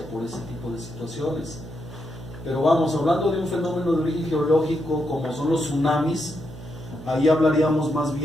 por ese tipo de situaciones. Pero vamos, hablando de un fenómeno de origen geológico como son los tsunamis, ahí hablaríamos más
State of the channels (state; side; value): noise; right; hum, 14 dB below the sound